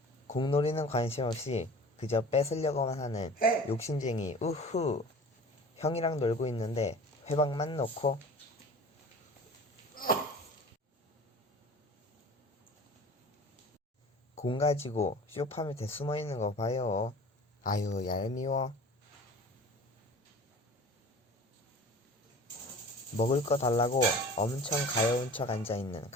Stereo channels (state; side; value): normal; both; correlation 0.41